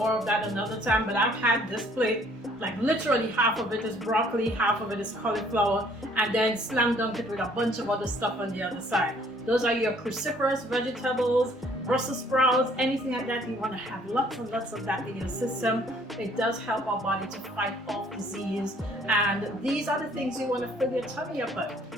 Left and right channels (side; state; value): both; normal; correlation 0.60